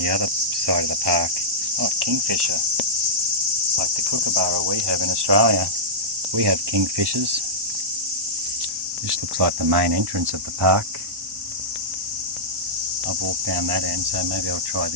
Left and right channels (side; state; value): left; late; 1.1 ms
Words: other side of the park. Oh, kingfisher. Like the kookaburra we have in Australia. We have kingfishers. This looks like the main entrance of the park. I've walked down that end, so maybe I'll try